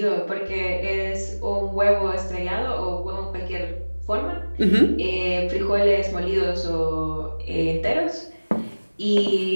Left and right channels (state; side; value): inverted; both; correlation -1.00